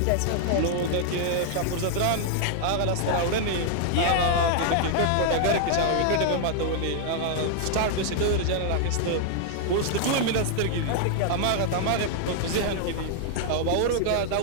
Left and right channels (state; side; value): different; both; correlation -0.01